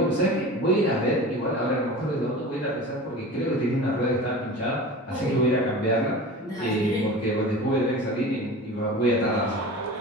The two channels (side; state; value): both; normal; correlation 0.34